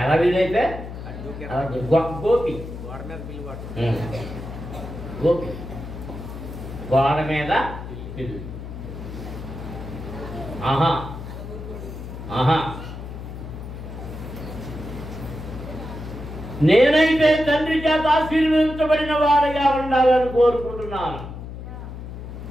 వీలైతే గోపి గోపి గోడ మీద పిల్లి. ఆహా ఆహా. నేనైతే తండ్రి చేత ఆశీర్వదించబడిన వాడిగా ఉండాలని కోరుకుంటున్నాను.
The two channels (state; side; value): noise; left; hum, 10 dB below the sound